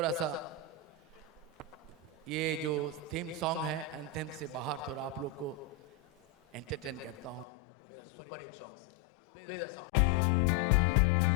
सा ये जो थीम सॉन्ग है एंथेम से बाहर थोड़ा आप लोग को एंटरटेन करता हूँ मेरा सुपर हिट सॉन्ग से play the song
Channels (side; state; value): right; drops out; at 7.5 s